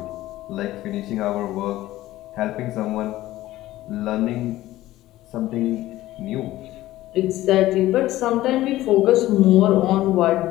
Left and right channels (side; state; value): right; quieter; 15.8 dB